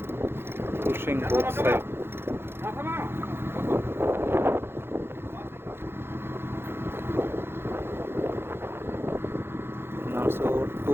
pushing both sides. And also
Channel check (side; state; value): left; late; 0.11 ms